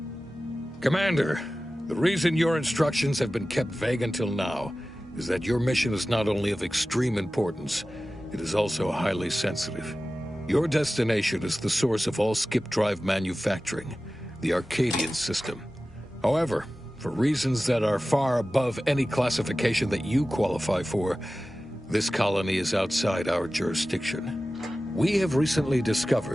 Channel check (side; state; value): both; normal; correlation 0.95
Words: Commander, the reason your instructions have been kept vague until now is that your mission is not only of extreme importance, it is also highly sensitive. Your destination is the source of all skip drive manufacturing, the Arcadian system. However, for reasons that are far above any classification that you qualify for, this colony is outside our jurisdiction. We have recently